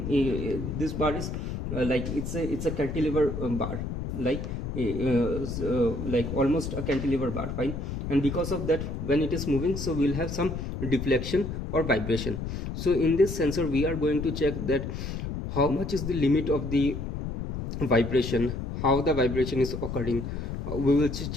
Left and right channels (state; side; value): noise; left; rumble, 5 dB below the sound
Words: bar is like it's a cantilever bar, like almost a cantilever bar, fine. And because of that, when it is moving, so we'll have some deflection or vibration. So in this sensor we are going to check that how much is the limit of the vibration, how the vibration is occurring, we will